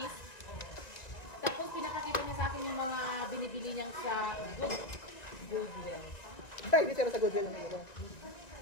tapos pinakakita niya sa akin yung mga binibili niyang sa Goodwill. Ay, dito na sa Goodwill ng ito.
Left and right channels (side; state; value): right; late; 1.9 ms